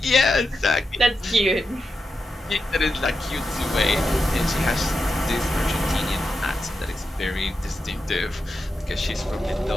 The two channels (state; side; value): normal; both; correlation 0.88